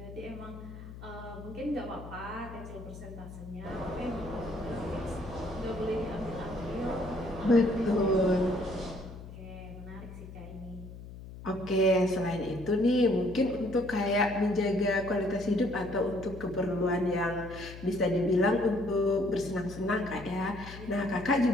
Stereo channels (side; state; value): left; noise; hum, 13 dB below the sound